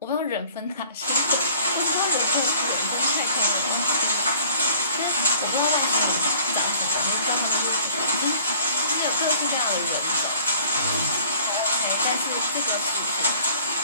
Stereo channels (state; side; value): inverted; both; correlation -0.51